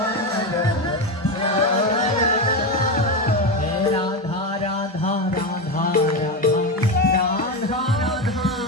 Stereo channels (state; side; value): normal; both; correlation 0.15